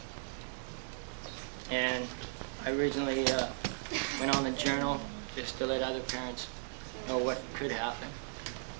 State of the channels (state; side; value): silent; left; digital silence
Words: And I originally went on the journal just to let other parents know what could happen.